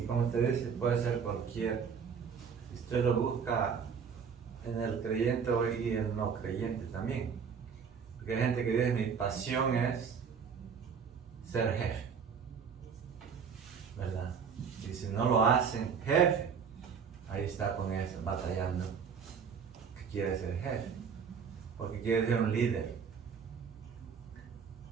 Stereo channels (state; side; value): quieter; left; 6.6 dB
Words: como usted dice, puede ser cualquier. Usted lo busca en el creyente y el no creyente también. Porque hay gente que dice, mi pasión es ser jefe, ¿verdad? Y si no lo hacen jefe, ahí está con eso, batallando, que quiere ser jefe, porque quiere ser un líder.